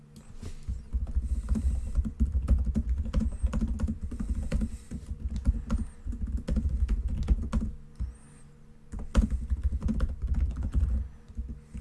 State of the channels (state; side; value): identical; both; correlation 1.00